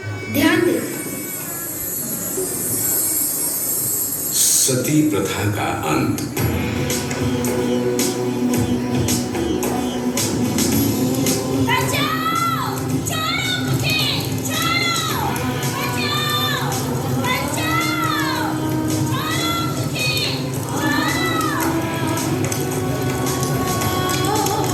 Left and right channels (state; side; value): identical; both; correlation 1.00